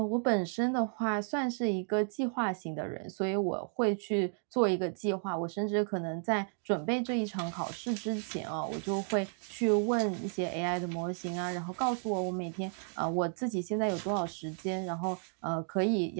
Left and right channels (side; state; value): left; silent; 56 dB below the other